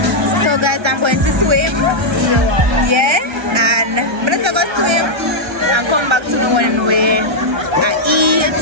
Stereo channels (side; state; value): left; late; 1.3 ms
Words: So guys, I'm going to swim. Yeah, and I'm gonna go swim and come back to the when we